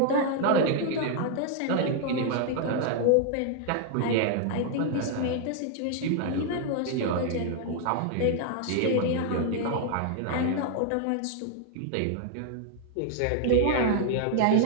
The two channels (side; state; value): both; different; correlation 0.00